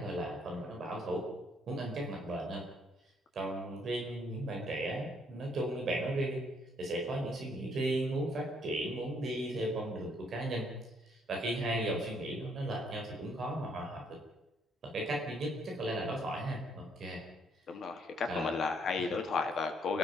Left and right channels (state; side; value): normal; both; correlation 0.68